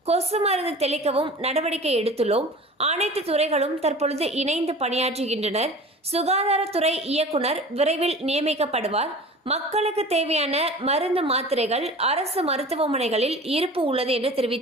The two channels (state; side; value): normal; both; correlation 0.39